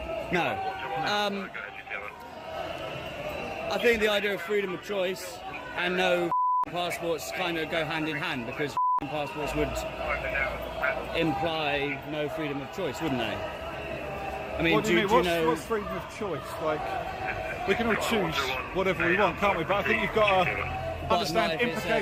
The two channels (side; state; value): both; identical; correlation 1.00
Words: No. I think the idea of freedom of choice and no passports kind of go hand in hand because passports would imply no freedom of choice, wouldn't they? I mean, what do you mean? know... What's freedom of choice? Like, we can all choose whatever we want, can't we? But I think you've got to understand